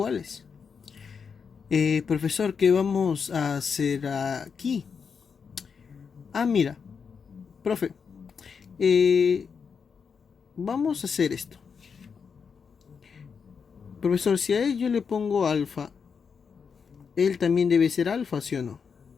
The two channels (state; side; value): quieter; right; 6.1 dB